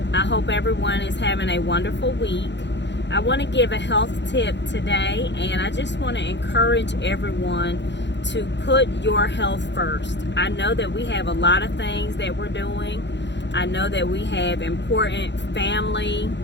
I hope everyone is having a wonderful week. I want to give a health tip today, and I just want to encourage everyone to put your health first. I know that we have a lot of things that we're doing. I know that we have important family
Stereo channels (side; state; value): right; late; 0.52 ms